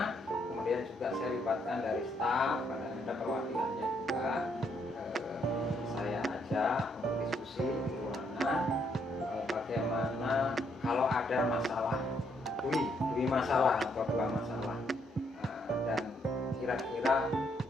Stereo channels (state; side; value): normal; both; correlation 0.73